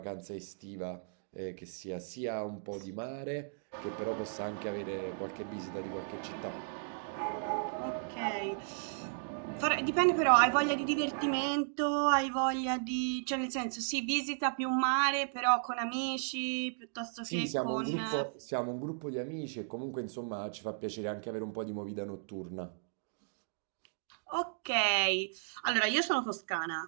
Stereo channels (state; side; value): silent; left; digital silence